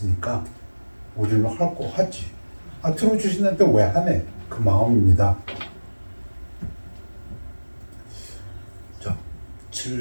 우리는 할 거 하지. 들어주시는데 왜 하네? 그 마음입니다. 자,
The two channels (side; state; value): both; inverted; correlation -1.00